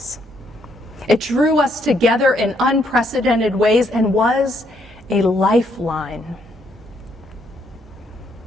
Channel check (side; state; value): both; normal; correlation 0.72